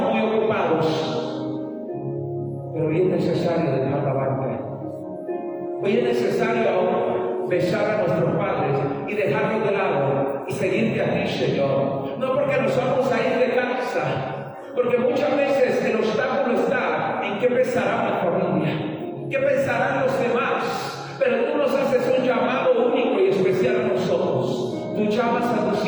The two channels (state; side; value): identical; both; correlation 1.00